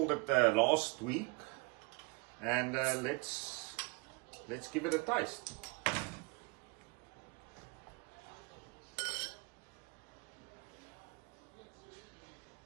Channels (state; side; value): quieter; left; 28.4 dB